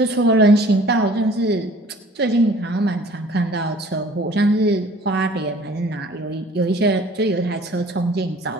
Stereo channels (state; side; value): normal; both; correlation 0.51